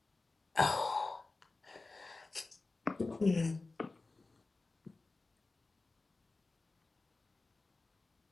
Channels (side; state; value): right; quieter; 3.5 dB